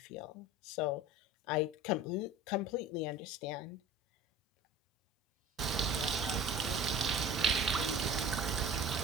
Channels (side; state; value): both; normal; correlation 0.40